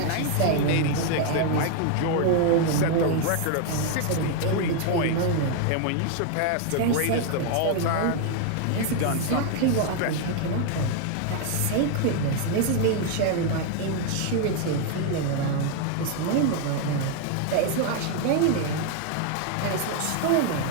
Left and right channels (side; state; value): both; different; correlation 0.00